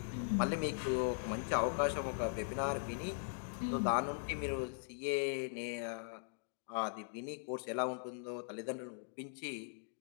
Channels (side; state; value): right; silent; digital silence